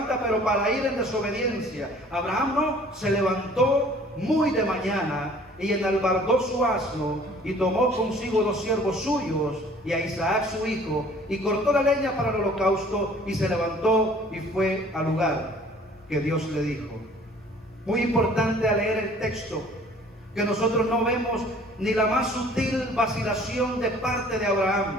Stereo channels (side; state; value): both; normal; correlation 0.53